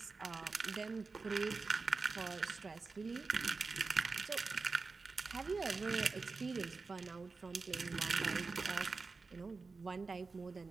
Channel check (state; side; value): quieter; left; 4.2 dB